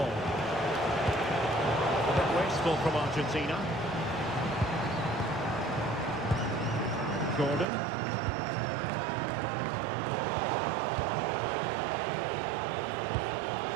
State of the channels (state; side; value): drops out; left; at 7.7 s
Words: A bit wasteful from Argentina. Gordon.